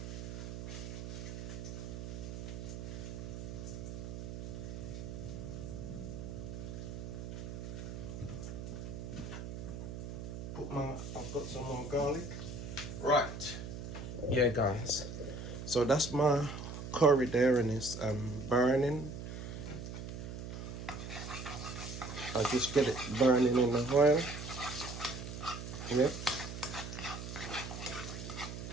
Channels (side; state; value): right; noise; hum, 7 dB below the sound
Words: I've got some more garlic. Right. Yeah, guys. So that's my curry there and it's burning. I just get it burning in the oil. Yep.